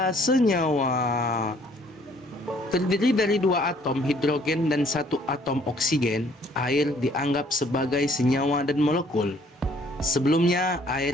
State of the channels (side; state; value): both; normal; correlation 0.61